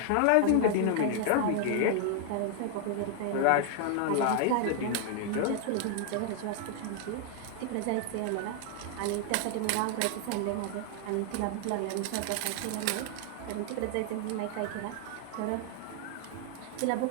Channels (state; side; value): different; both; correlation 0.00